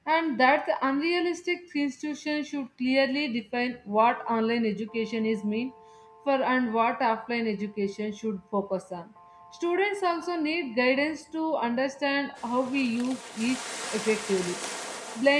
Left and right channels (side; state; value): both; identical; correlation 1.00